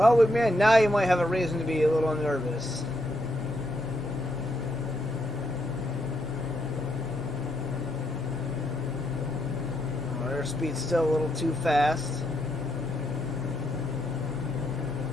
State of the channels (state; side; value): normal; both; correlation 0.78